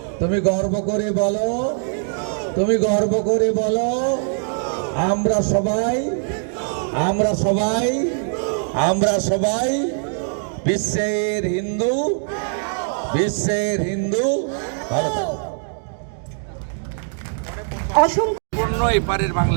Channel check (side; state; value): left; silent; digital silence